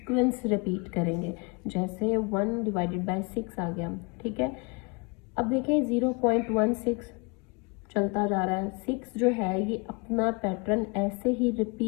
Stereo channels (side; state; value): right; quieter; 30.4 dB